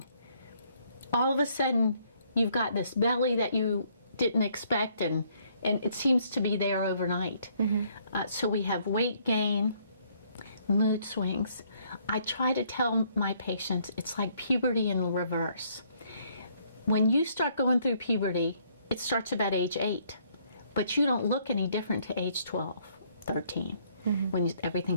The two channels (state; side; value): inverted; both; correlation -0.67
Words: All of a sudden, you've got this belly that you didn't expect, and it seems to be there overnight. So we have weight gain, mood swings. I try to tell my patients it's like puberty in reverse. When you start going through puberty, it starts about age 8, but you don't look any different to age 12, 13, when everything